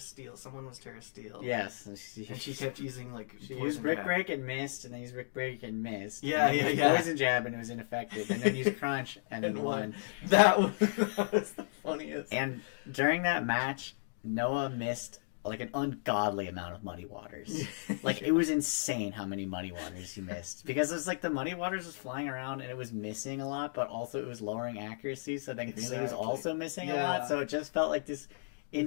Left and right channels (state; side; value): silent; right; digital silence